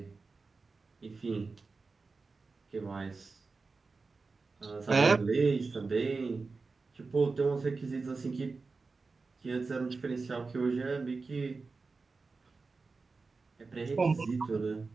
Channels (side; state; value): left; quieter; 4.1 dB